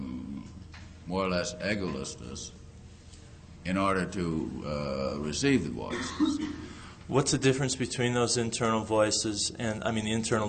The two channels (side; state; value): both; identical; correlation 1.00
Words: more or less egolessness in order to receive the voices. What's the difference between those internal voices and, the internal